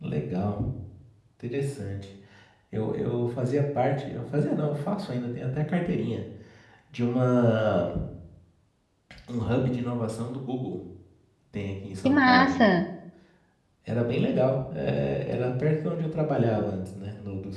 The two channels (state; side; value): identical; both; correlation 1.00